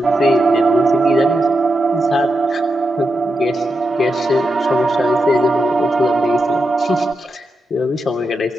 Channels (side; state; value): both; normal; correlation 0.87